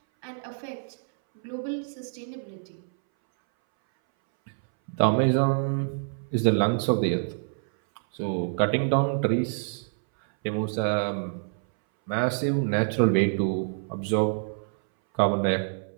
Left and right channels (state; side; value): silent; left; 60 dB below the other